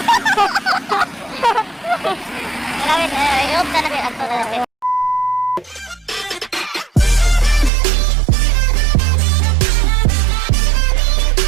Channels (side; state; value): left; drops out; at 7.7 s